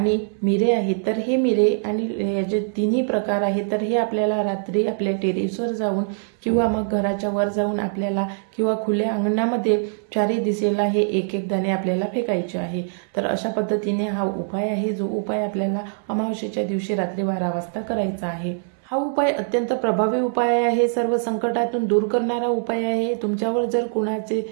मिरे आहेत तर हे मिरे आणि याचे तिन्ही प्रकार आहेत तर हे आपल्याला रात्री आपल्या टेरेसवर जाऊन किंवा मग घराच्या वर जाऊन आपल्याला किंवा खुल्या अंगणामध्ये 4ही दिशेला हे एक एक दाणे आपल्याला फेकायचे आहे. तर अशा पद्धतीने हा उपाय आहे, जो उपाय आपल्याला अमावस्येच्या दिवशी रात्री 12 वाजता करायचा आहे. हा उपाय अत्यंत प्रभावी उपाय आहे, सर्व संकटातून दूर करणारा उपाय आहे. तुमच्यावर जर कुणाचे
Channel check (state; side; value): silent; left; 64 dB below the other